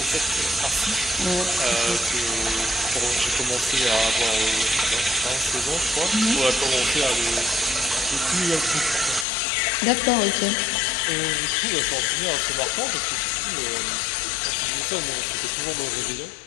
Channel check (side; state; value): right; drops out; at 9.2 s